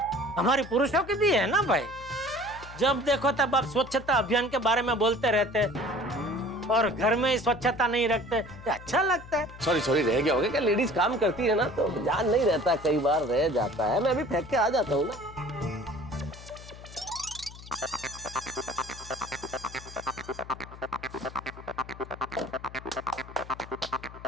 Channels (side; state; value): left; noise; hum, 16 dB below the sound